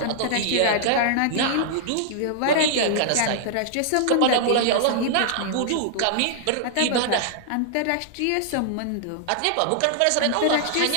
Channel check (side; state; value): both; different; correlation -0.01